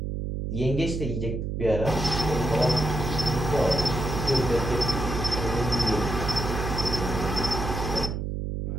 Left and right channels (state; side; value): noise; right; hum, 3 dB below the sound